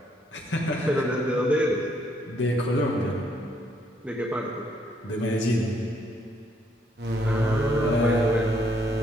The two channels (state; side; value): normal; both; correlation 0.70